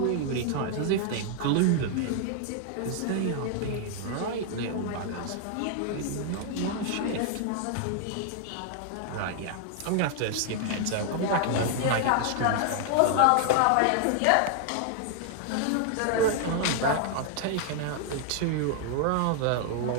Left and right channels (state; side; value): different; both; correlation 0.00